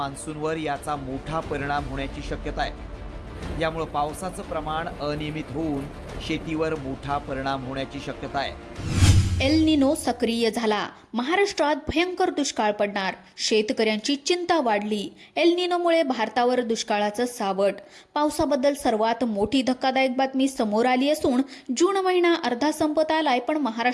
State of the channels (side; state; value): both; identical; correlation 1.00